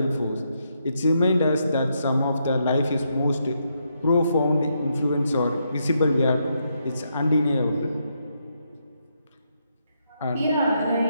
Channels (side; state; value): both; inverted; correlation -0.79